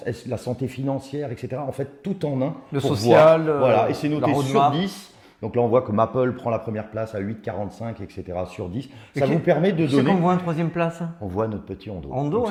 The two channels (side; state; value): both; identical; correlation 1.00